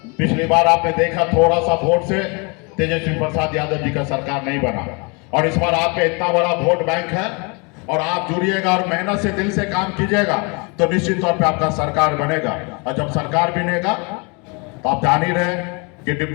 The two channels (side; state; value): right; quieter; 31.5 dB